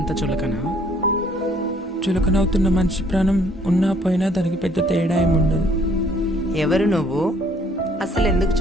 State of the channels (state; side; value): normal; both; correlation 0.62